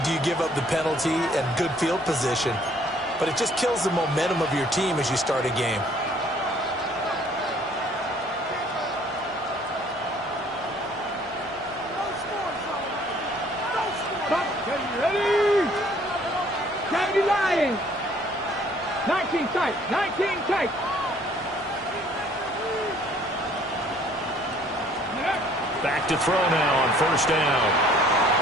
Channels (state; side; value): normal; both; correlation 0.59